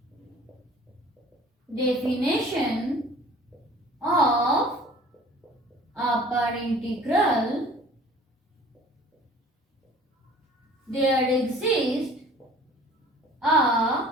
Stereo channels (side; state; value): both; normal; correlation 0.48